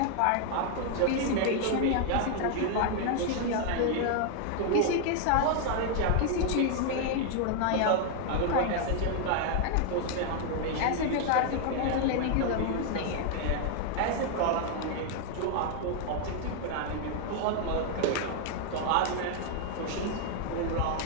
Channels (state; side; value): different; both; correlation 0.00